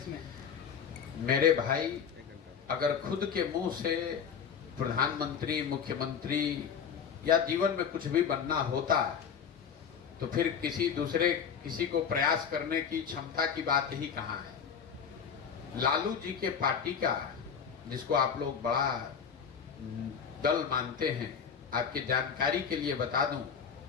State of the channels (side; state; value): right; quieter; 7.1 dB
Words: में? मेरे भाई, अगर खुद के मुंह से प्रधानमंत्री, मुख्यमंत्री या जीवन में कुछ भी बनना होता तो फिर किसी को प्रयास करने की क्षमता की बात ही कहाँ है। लालू जी के पार्टी का, जिसको आप लोग बड़ा दल मानते हैं, आपकी जानकारी के लिए बता दूं,